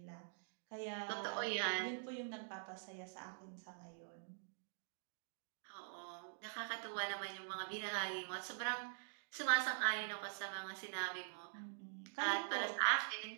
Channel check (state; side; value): silent; left; digital silence